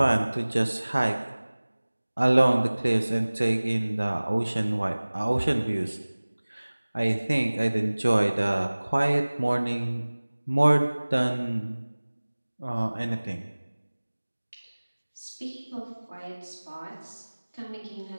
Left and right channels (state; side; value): inverted; both; correlation -1.00